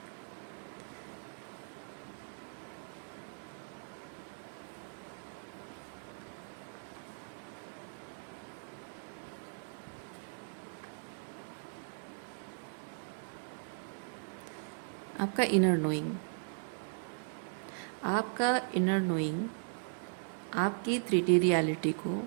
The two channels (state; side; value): silent; left; digital silence